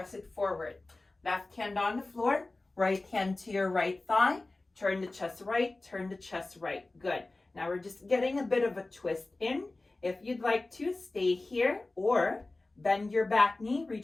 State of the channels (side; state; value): right; quieter; 3.1 dB